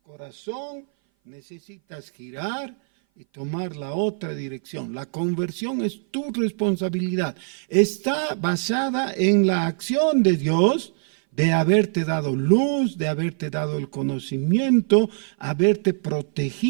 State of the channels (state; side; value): silent; left; 58 dB below the other